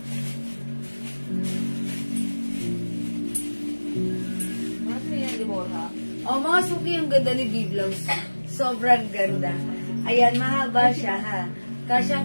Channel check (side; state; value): both; inverted; correlation -1.00